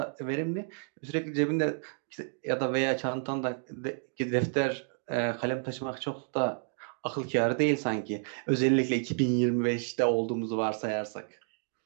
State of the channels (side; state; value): left; silent; 55 dB below the other